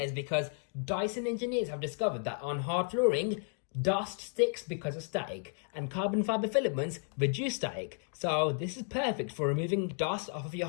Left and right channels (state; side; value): silent; right; 56 dB below the other